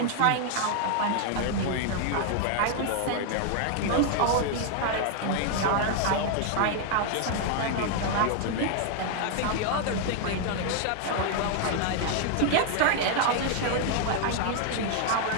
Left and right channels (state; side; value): different; both; correlation 0.00